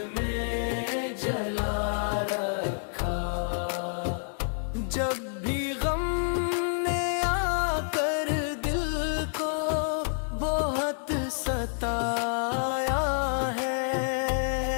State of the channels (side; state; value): right; silent; digital silence